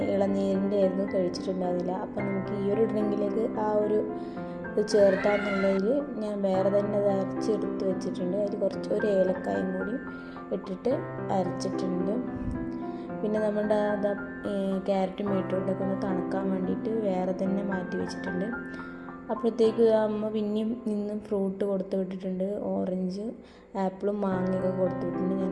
ഇളനീരിൻ്റെ ആയിരുന്നു, കഴിച്ചിട്ടുണ്ടായിരുന്നില്ല. അപ്പം നമുക്ക് ഈ ഒരു ഡ്രിങ്കിലേക്ക് ആ ഒരു ചേർത്താന്നുള്ളതിൽ ഞാൻ വേറെ തന്നെ അത് അരച്ചെടുത്ത് വെച്ചിട്ടുണ്ട്. അതിൽ ഒരു ഏലക്കായും കൂടി ഇട്ടിട്ട് അരച്ചിട്ടുണ്ട്. പിന്നെ നമ്മുടെ ക്യാരറ്റും ബീട്രൂട്ടൊക്കെ ഒന്ന് തണുക്കാൻ വേണ്ടിയിട്ട് വേറെ തന്നെ മാറ്റി വെച്ചിട്ടുണ്ട്. അപ്പോഴത്തേക്ക് അമ്മ പിന്നെയും നിന്നും ഫ്രൂട്ട് കൊടുത്ത് വിട്ടിട്ടുണ്ട്. ഓറഞ്ച്, ആപ്പിളും മാങ്ങയൊക്കെ കൊടുത്ത് വിട്ടിട്ടുണ്ട്.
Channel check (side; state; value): both; identical; correlation 1.00